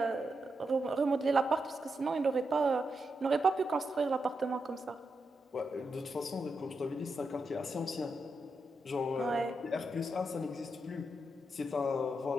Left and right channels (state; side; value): normal; both; correlation 0.85